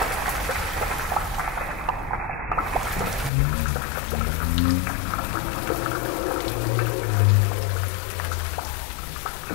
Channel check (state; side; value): drops out; right; at 3.3 s